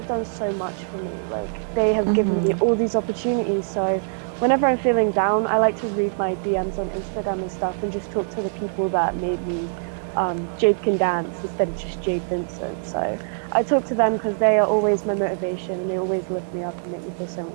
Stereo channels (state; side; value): silent; left; digital silence